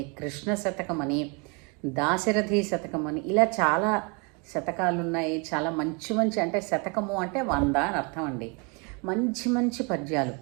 కృష్ణ శతకమని, దాశరథి శతకమని ఇలా చాలా శతకాలు ఉన్నాయి. చాలా మంచి మంచి, అంటే శతకము అంటే 100 అని అర్థం అండి. మంచి మంచి పద్యాలు,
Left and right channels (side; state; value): left; quieter; 32.3 dB